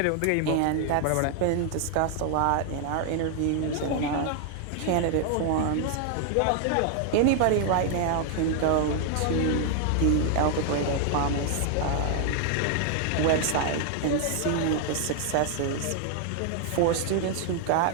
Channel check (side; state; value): both; different; correlation 0.00